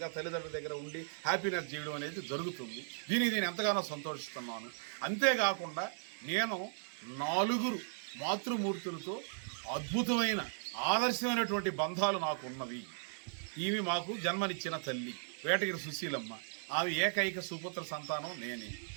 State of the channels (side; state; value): left; silent; digital silence